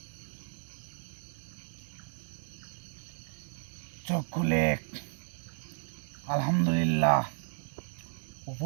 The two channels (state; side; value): silent; left; digital silence